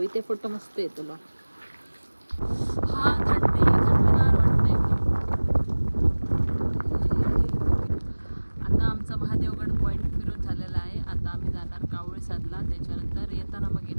इथे फोटो मस्त आहे तुला. हा थंडगार वाटते. आता आमचा महादेवगड पॉइंट फिरून झालेला आहे. आता आम्ही जाणार कावळेसादला, त्याच्यानंतर येताना मग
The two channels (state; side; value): inverted; both; correlation -1.00